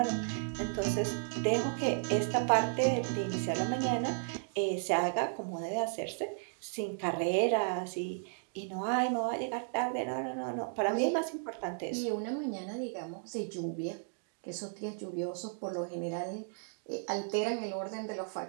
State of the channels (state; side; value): silent; left; digital silence